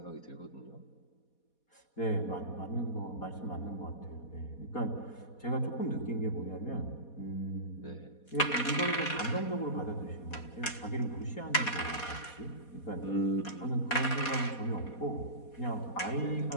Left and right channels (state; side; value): late; right; 4.2 ms